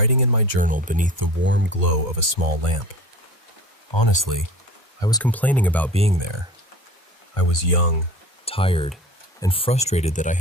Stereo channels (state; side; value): normal; both; correlation 0.39